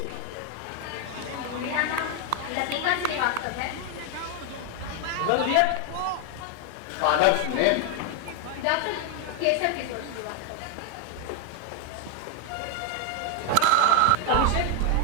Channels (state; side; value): different; both; correlation 0.01